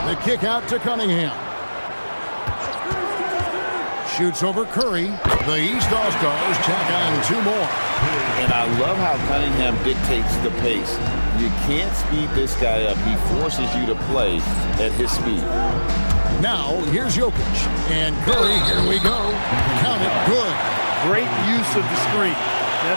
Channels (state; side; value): inverted; both; correlation -1.00